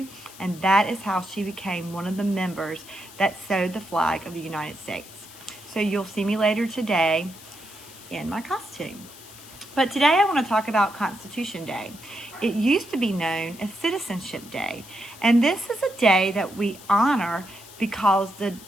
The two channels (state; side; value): noise; left; hiss, 18 dB below the sound